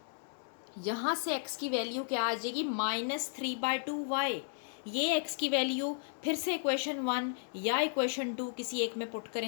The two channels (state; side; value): silent; right; digital silence